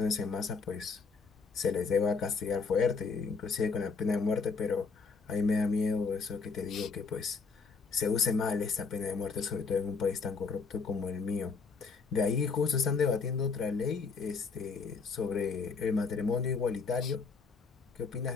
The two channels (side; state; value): right; quieter; 4.8 dB